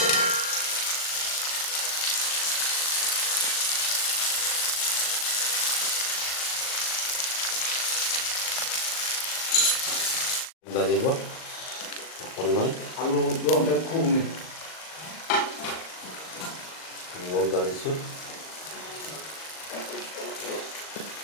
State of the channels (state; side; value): late; right; 38 ms